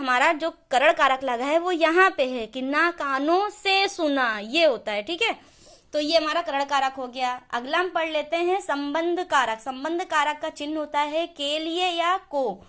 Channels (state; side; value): identical; both; correlation 1.00